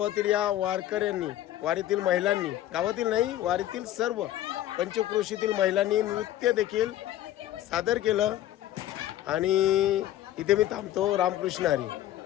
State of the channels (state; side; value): quieter; right; 13.2 dB